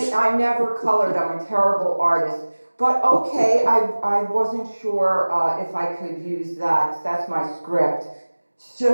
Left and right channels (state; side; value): inverted; both; correlation -1.00